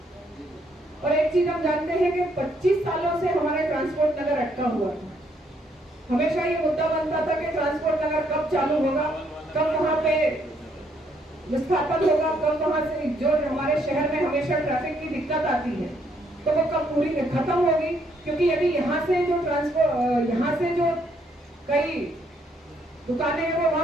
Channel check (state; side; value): normal; both; correlation 0.71